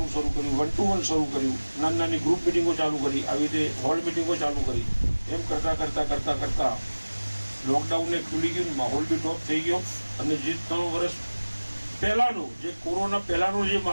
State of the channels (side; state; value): both; inverted; correlation -1.00